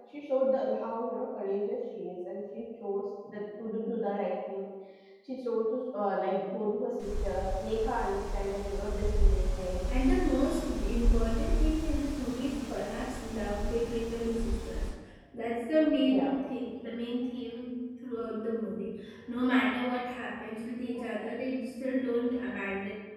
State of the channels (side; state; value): both; identical; correlation 1.00